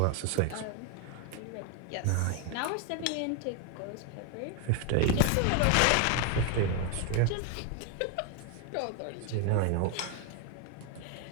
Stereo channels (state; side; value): different; both; correlation 0.01